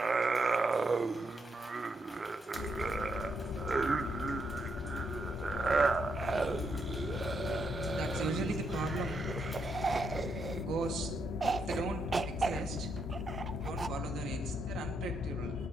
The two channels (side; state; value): both; normal; correlation 0.79